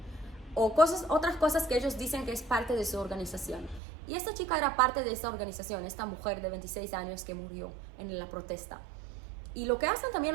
O otras cosas que ellos dicen que es parte de su organización. Y esta chica era parte de esta organización, esta mujer de 26 años que murió en la protesta. Y lo que hacen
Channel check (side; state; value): left; drops out; at 3.8 s